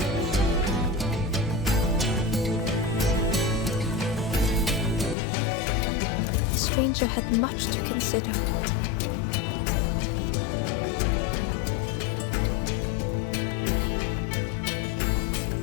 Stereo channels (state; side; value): drops out; right; at 5.2 s